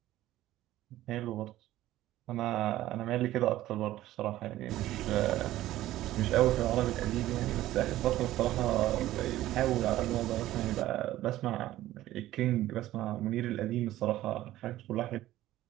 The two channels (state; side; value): quieter; left; 14.8 dB